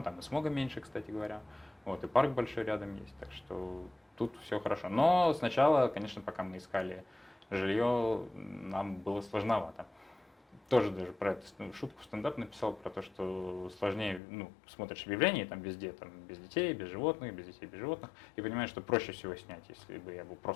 там и смога меньше, кстати говоря. Вот, и парк большой рядом есть, так что тут все хорошо. Но сначала, конечно, пока мы искали жилье, нам было сложновато. Тоже даже про эту шутку в стендап написал, про то, что сложнее, ну, смотришь объявления, там везде, там, без детей, без животных, без детей, без животных, и понимаешь, что проще всего снять, если бы я был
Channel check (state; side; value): drops out; right; at 14.2 s